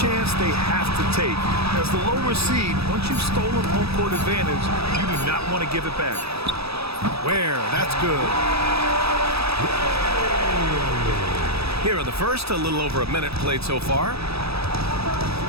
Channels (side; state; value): left; late; 0.78 ms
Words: chance they have to take. As the lower seed, once you've stolen home court advantage, you do not want to give it back. Ware, that's good. Here in the first, a little over a minute played so far.